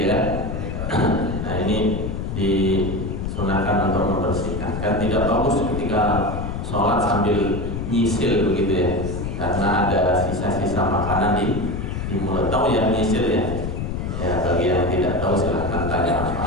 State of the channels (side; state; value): left; noise; rumble, 4 dB below the sound